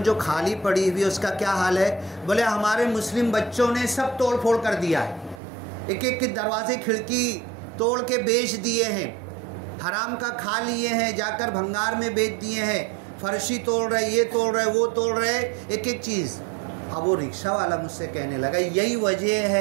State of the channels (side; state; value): left; drops out; at 5.4 s